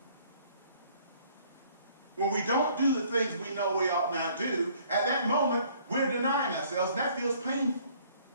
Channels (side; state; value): both; inverted; correlation -0.59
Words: When we don't do the things we know we ought not do, at that moment, we're denying ourselves, and that feels painful.